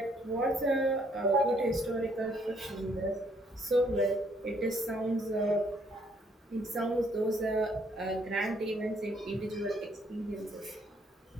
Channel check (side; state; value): both; normal; correlation 0.68